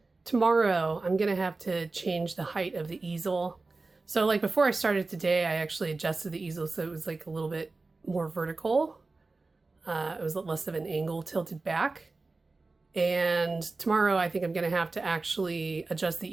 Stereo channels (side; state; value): left; quieter; 3.6 dB